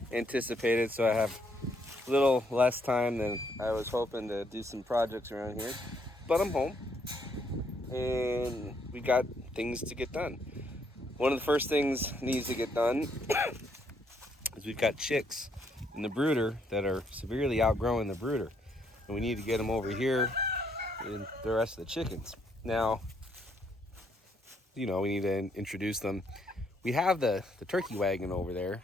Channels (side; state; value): both; normal; correlation 0.71